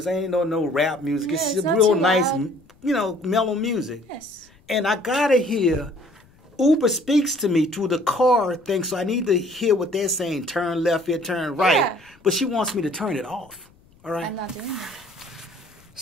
I ain't know no rap music. Yeah, it's real nice, mellow music. Yes. And I gotta hear. Uber speaks to me through the car thing, so I need to hear what they're saying. Turn left here, turn right. Yeah. But she wants me to turn it off. All right. I'm not doing that.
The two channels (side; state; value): left; noise; rumble, 29 dB below the sound